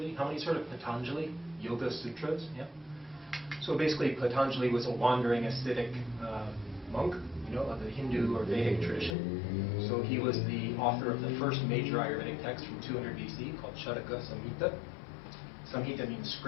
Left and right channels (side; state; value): right; drops out; at 9.2 s